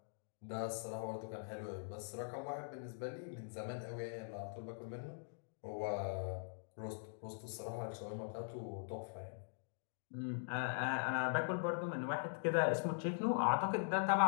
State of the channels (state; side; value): silent; right; digital silence